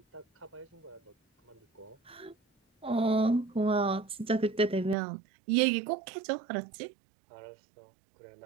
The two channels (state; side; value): drops out; left; at 5.0 s